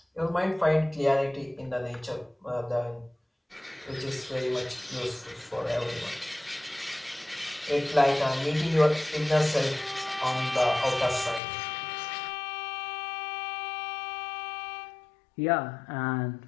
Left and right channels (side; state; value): right; drops out; at 11.4 s